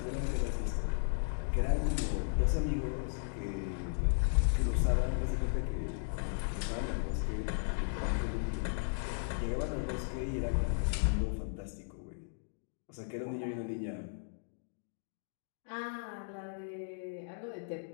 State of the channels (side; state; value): right; silent; digital silence